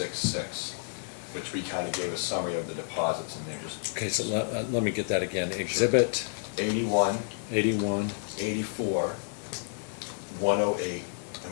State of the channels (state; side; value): silent; right; 57 dB below the other